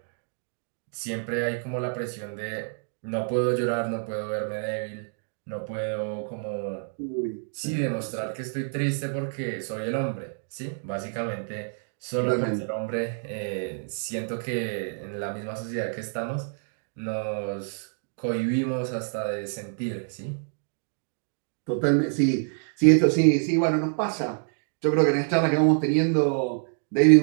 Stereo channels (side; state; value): left; silent; 60 dB below the other